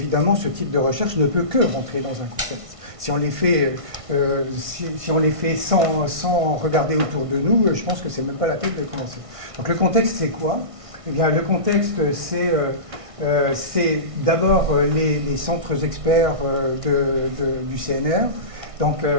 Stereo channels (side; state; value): left; late; 1.6 ms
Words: ce type de recherche ne peut que rentrer dans un contexte. Si on les fait sans regarder autour de nous, je pense que c'est même pas la peine de commencer. Donc le contexte, c'est quoi? Eh bien, le contexte, c'est d'abord les centres experts du CNR. Donc,